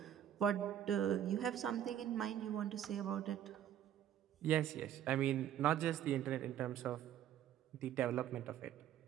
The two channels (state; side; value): quieter; left; 10.7 dB